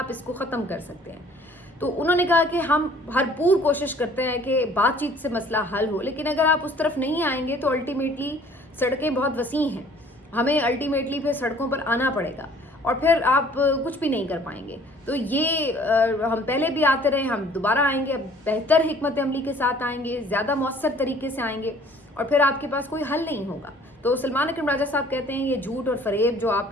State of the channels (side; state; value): both; normal; correlation 0.54